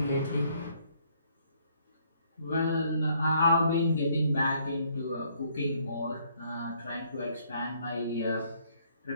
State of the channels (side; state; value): both; inverted; correlation -0.66